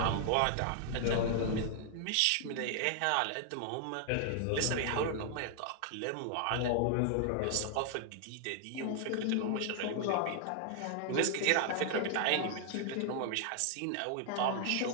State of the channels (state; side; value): different; both; correlation 0.00